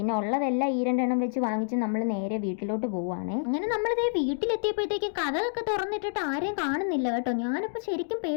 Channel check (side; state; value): right; silent; digital silence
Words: ഉള്ളതെല്ലാം ഈ രണ്ടെണ്ണം വെച്ച് വാങ്ങിച്ച് നമ്മൾ നേരെ വീട്ടിലോട്ട് പോവുകയാണ്. അങ്ങനെ നമ്മളിതേ വീട്ടിലെത്തിയപ്പോഴത്തേക്കും കഥകളൊക്കെ തുറന്നിട്ടിട്ട് ആരെയും കാണുന്നില്ല കേട്ടോ. ഞാനിപ്പോൾ ശരിക്കും